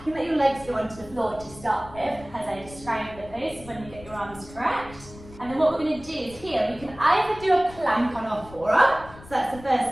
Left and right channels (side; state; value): left; noise; rumble, 18 dB below the sound